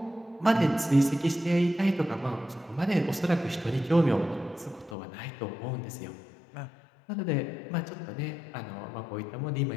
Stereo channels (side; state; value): right; drops out; at 5.0 s